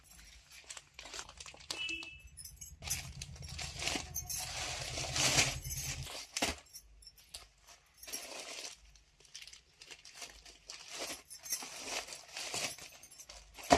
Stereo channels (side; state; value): both; identical; correlation 1.00